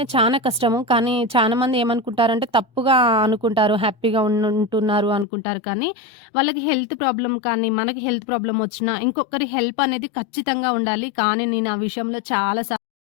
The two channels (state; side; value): drops out; right; at 5.2 s